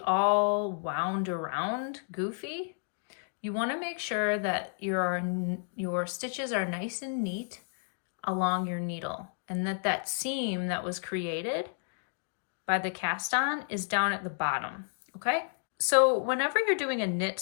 wound around goofy. You want to make sure that your stitches are nice and neat along your needle, and that seam that was created by the cast on is down at the bottom, okay? So whenever you're doing a knit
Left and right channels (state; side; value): silent; right; digital silence